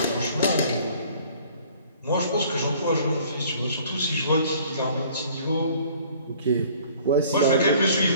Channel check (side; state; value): both; inverted; correlation -0.54